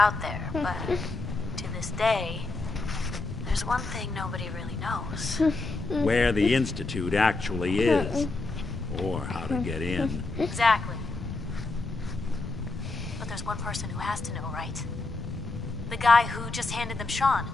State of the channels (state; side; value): quieter; right; 3.3 dB